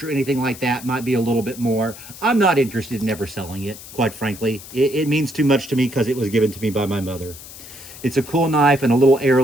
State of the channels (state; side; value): noise; left; hiss, 16 dB below the sound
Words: or anything like that might be a little bit more. I'm not interested in ever selling it, quite frankly. It means too much to me because it was given to me by my mother. It's a cool knife and a little